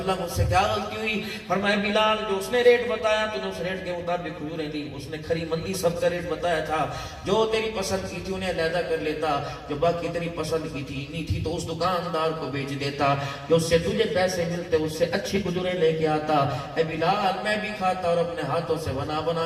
اللہ مجھ سے کیا غلطی ہوئی؟ فرمایا بلال جو اس نے ریٹ بتایا تو نے اس ریٹ کے مطابق کھجوریں دی، اس نے کھری مندی سب کا ریٹ بتایا تھا، جو تیری پسند کی تھی انہیں علیحدہ کر لیتا، جو باقی تیری پسند کی تھی نہیں تھی تو اس دکاندار کو بیچ دیتا، جو اس سے تجھے پیسے ملتے اس سے اچھی کھجوریں لے کے آتا۔ اے بلال میں بھی کھاتا اور اپنے ہاتھوں سے بنا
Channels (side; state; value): both; identical; correlation 1.00